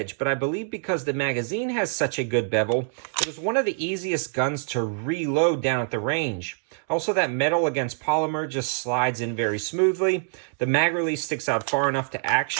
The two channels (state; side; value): silent; left; digital silence